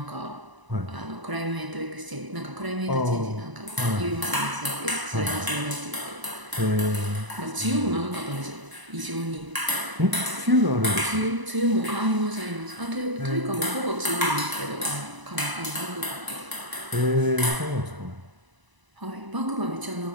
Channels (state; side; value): late; left; 1.0 ms